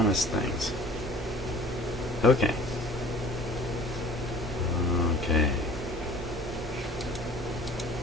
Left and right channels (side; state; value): both; normal; correlation 0.47